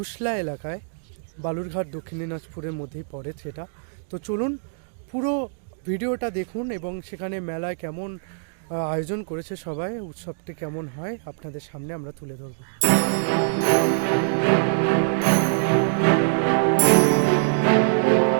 এলাকায়, বালুরঘাট দক্ষিণ দিনাজপুরের মধ্যেই পড়ে সেটা। তো চলুন পুরো ভিডিওটা দেখুন এবং সেখানে মেলায় কেমন আয়োজন করেছে সবাই, উৎসবটি কেমন হয় আপনাদের সামনে আমরা তুলে ধরব।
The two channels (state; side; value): silent; left; digital silence